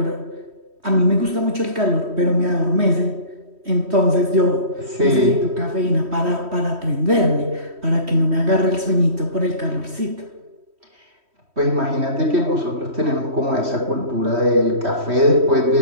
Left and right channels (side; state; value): left; late; 3.1 ms